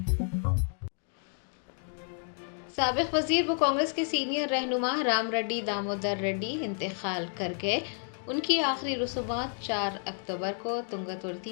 साबिक वजीर व कांग्रेस के सीनियर रहनुमा राम रेड्डी दामोदर रेड्डी इंतकाल कर गए। उनकी आखिरी रसूमात 4 अक्टूबर को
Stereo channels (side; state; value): right; silent; 57 dB below the other